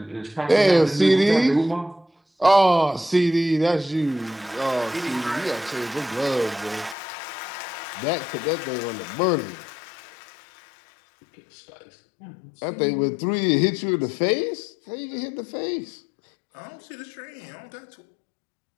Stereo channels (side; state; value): right; drops out; at 7.0 s